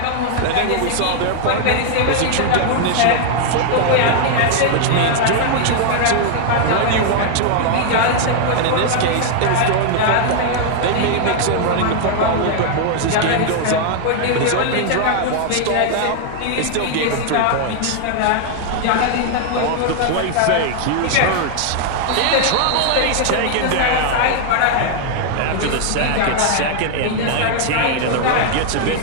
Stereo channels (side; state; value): both; different; correlation 0.00